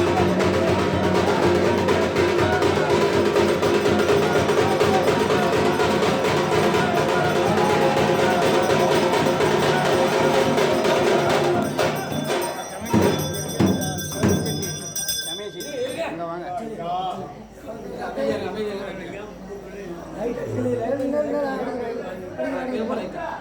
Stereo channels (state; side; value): identical; both; correlation 1.00